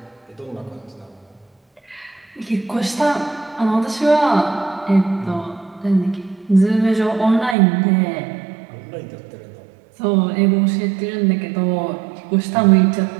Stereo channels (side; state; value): left; drops out; at 7.6 s